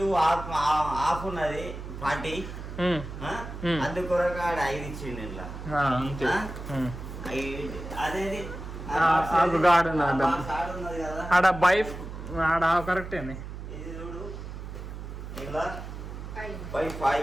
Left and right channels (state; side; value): noise; right; hum, 9 dB below the sound